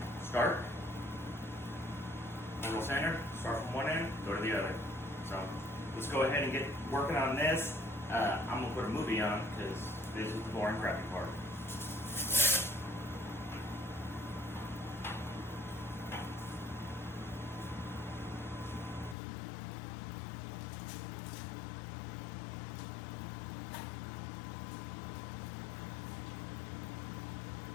start. Orbital sander, start from one end, go to the other. So let's go ahead and get working on this. I'm gonna put a movie on because this is the boring, crappy part.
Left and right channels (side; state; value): right; drops out; at 19.2 s